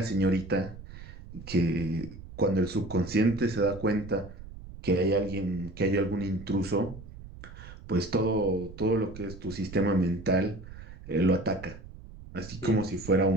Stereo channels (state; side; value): noise; right; rumble, 15 dB below the sound